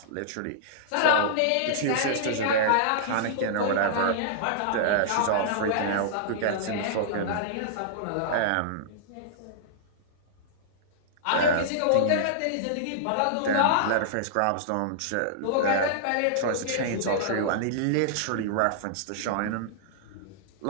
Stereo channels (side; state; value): both; different; correlation -0.02